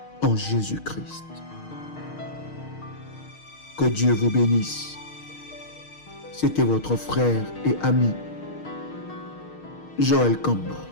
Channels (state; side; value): late; right; 6.5 ms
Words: en Jésus-Christ. Que Dieu vous bénisse. C'était votre frère et ami, Joël Kamba,